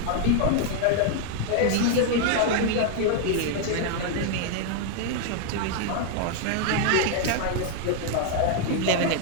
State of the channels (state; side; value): different; both; correlation 0.00